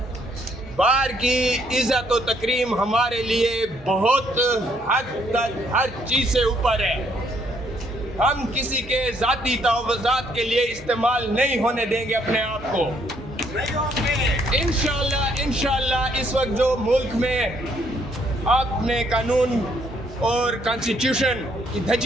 بار کی عزت و تکریم ہمارے لیے بہت حد تک ہر چیز سے اوپر ہے۔ ہم کسی کے ذاتی تحفظات کے لیے استعمال نہیں ہونے دیں گے اپنے آپ کو۔ انشاءاللہ اس وقت جو ملک میں آپ نے قانون اور کانسٹیٹیوشن کی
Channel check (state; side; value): normal; both; correlation 0.69